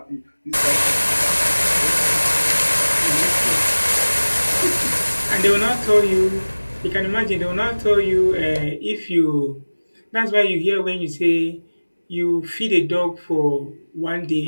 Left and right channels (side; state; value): both; inverted; correlation -1.00